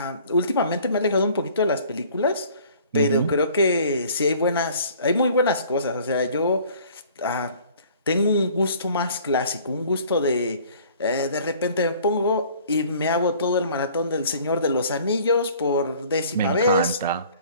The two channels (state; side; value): inverted; both; correlation -0.52